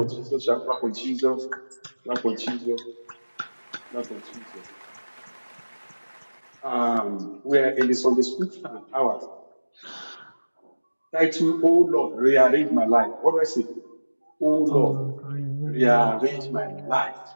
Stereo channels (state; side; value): inverted; both; correlation -1.00